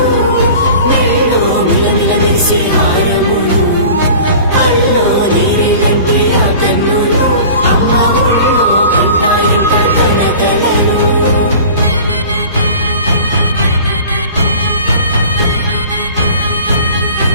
మెల్లో మిలమిల మెరిసే హారములు అల్లో నీరిలంటే ఆ కన్నులు అమ్మ ఒళ్ళో కంటాయంట కలకలను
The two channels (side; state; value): both; inverted; correlation -0.42